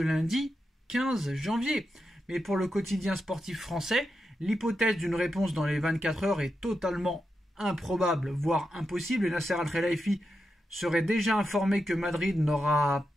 15 janvier. Mais pour le quotidien sportif français, l'hypothèse d'une réponse dans les 24 heures est totalement improbable, voire impossible, et Nasser Al-Khelaifi serait déjà informé que Madrid n'aura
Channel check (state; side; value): normal; both; correlation 0.87